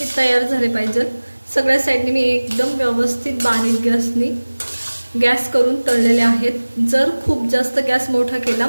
तयार झाले पाहिजे। सगळ्या साईडने मी एकदम व्यवस्थित बारीक गॅस करून तळलेले आहेत। जर खूप जास्त गॅस मोठा केला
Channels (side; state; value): both; inverted; correlation -1.00